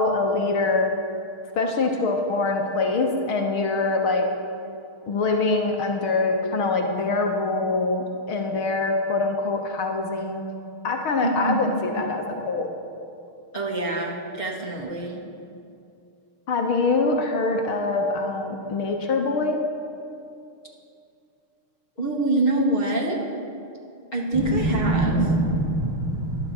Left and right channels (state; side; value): late; right; 6.4 ms